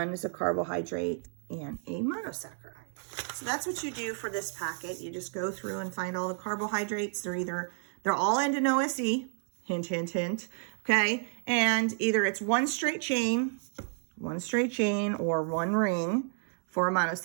is a carbohydrate and a monosaccharide. So that's what you do for this packet. You just go through and find all the carbohydrates. They're all end in OSE, hint, hint, hint, okay? And either it's one straight chain or one ring for a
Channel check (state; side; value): silent; left; 56 dB below the other